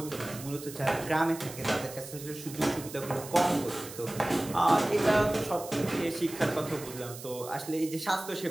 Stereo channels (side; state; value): right; noise; hiss, 13 dB below the sound